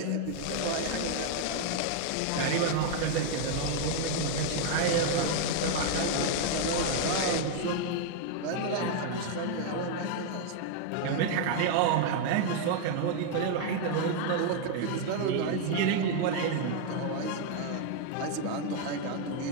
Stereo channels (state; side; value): different; both; correlation 0.00